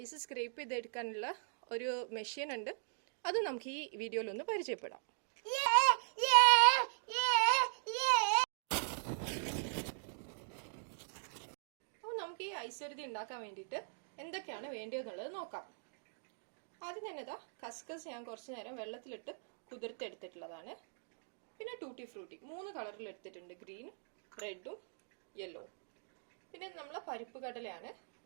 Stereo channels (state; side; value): silent; left; digital silence